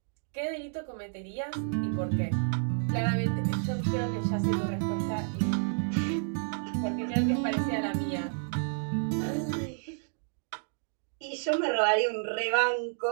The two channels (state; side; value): silent; left; digital silence